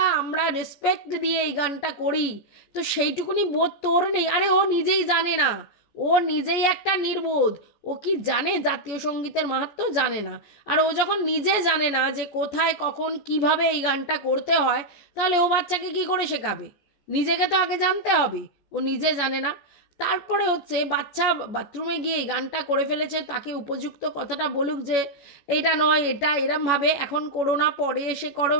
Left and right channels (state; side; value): late; right; 14 ms